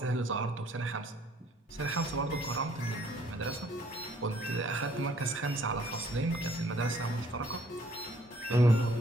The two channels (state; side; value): normal; both; correlation 0.62